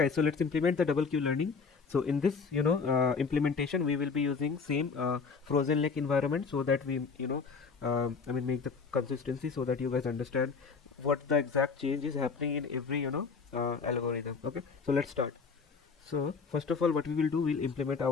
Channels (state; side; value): quieter; right; 5.1 dB